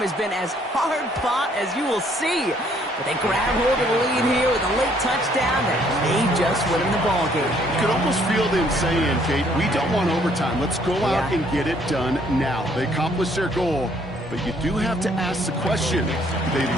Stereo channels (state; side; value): normal; both; correlation 0.65